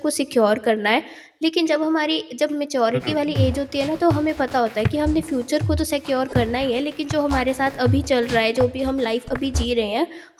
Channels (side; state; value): both; identical; correlation 1.00